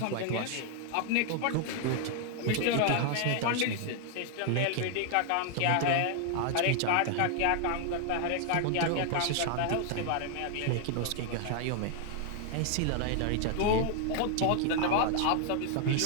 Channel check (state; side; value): different; both; correlation 0.00